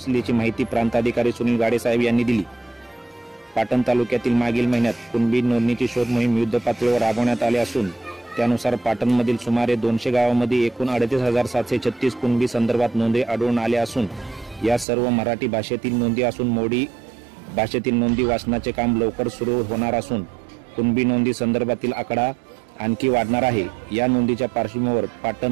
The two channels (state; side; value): drops out; left; at 14.9 s